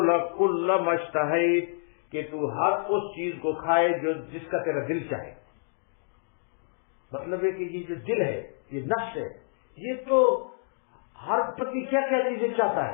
کل ما اشتہیت، کہ تو ہر اس چیز کو کھائے جو جس کا تیرا دل چاہے۔ مطلب ہے کہ یہ جو دل ہے، یہ نفس ہے، یہ تو ہر پتی کیا کیا چیزیں چاہتا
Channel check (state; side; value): silent; right; digital silence